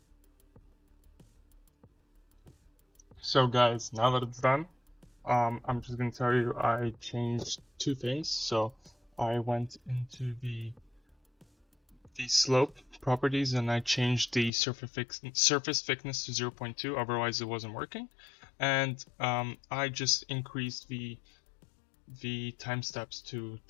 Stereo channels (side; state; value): right; drops out; at 14.5 s